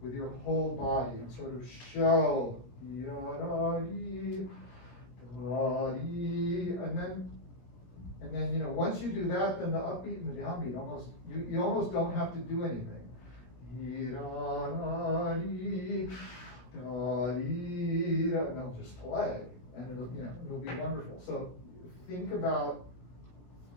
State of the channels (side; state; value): right; late; 17 ms